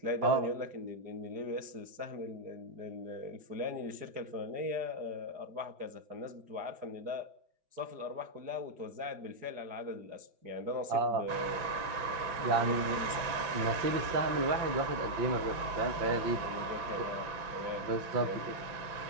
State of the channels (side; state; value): left; late; 5.9 ms